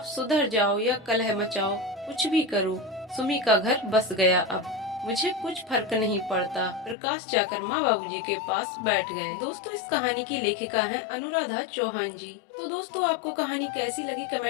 सुधर जाओ या कलह मचाओ, कुछ भी करो, सुमी का घर बस गया। अब मुझे कुछ फर्क नहीं पड़ता। प्रकाश जाकर माँ बाबूजी के पास बैठ गए। दोस्तों, इस कहानी की लेखिका हैं अनुराधा चौहान जी। तो दोस्तों, आपको कहानी कैसी लगी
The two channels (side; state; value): right; drops out; at 7.0 s